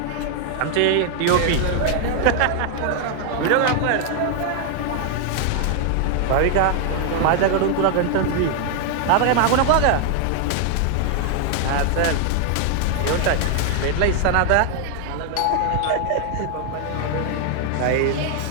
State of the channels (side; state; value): both; different; correlation 0.00